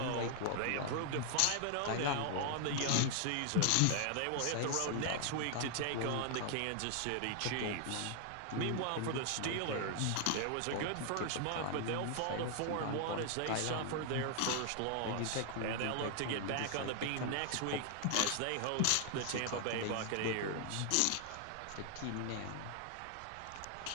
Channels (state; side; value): different; both; correlation 0.00